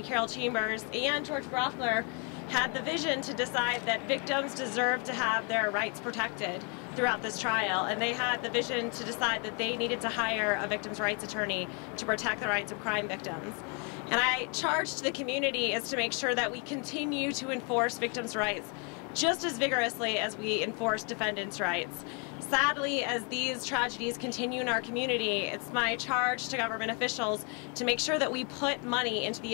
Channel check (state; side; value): quieter; right; 35.7 dB